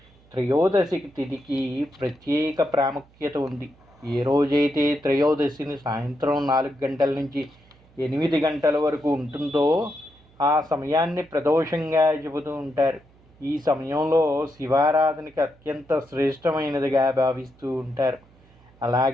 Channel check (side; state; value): right; noise; hum, 29 dB below the sound